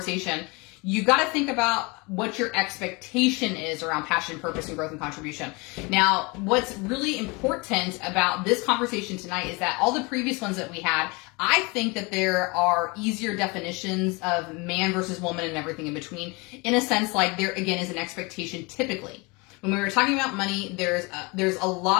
you got to think about what your expectation is around passion, purpose, and growth and contribution. Now, what's really important about this conversation tonight is that all the previous ones that we had, I think that there are easier definitions of man versus woman and everything in between. In a sense, like there again is an expectation typically. When we were talking about money, there's a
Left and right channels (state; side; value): quieter; right; 27.3 dB